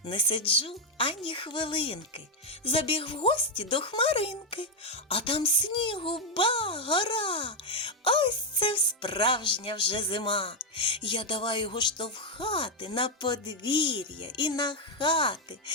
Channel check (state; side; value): normal; both; correlation 0.03